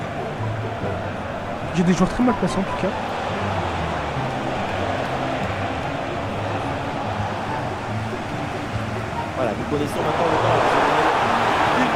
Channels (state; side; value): identical; both; correlation 1.00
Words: J'ai des joueurs très mal placés en tout cas. Voilà, nous connaissons maintenant le temps additionnel.